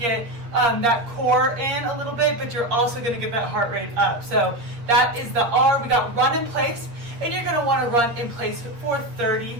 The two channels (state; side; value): late; left; 8.5 ms